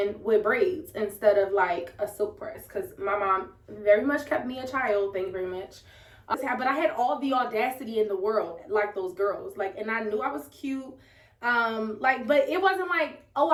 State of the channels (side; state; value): both; identical; correlation 1.00